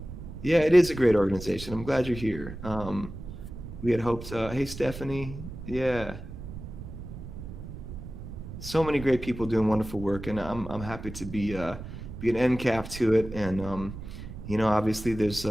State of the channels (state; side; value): noise; right; rumble, 11 dB below the sound